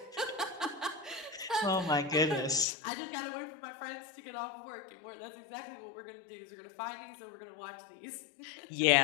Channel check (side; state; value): right; drops out; at 2.7 s